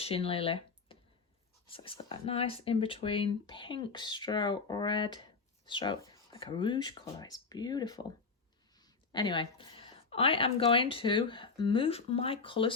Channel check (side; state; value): right; quieter; 4.5 dB